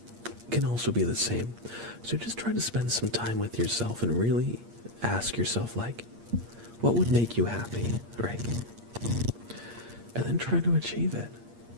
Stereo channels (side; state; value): left; late; 8.6 ms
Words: can also be the same. So just try to spend some time with yourself and really ask yourself, like, what would make you happy, right? And then try to achieve it.